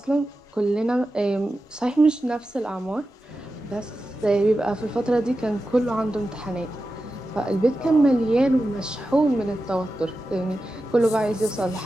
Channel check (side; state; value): both; normal; correlation 0.92